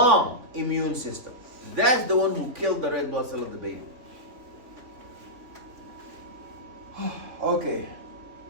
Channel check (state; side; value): late; left; 3.5 ms